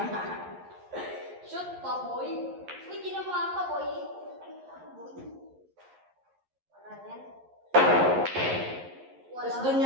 Shoot pa, boy. Uy, ginawa pa, boy. Ay, boy. Wala yan. Tapos doon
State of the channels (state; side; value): late; left; 11 ms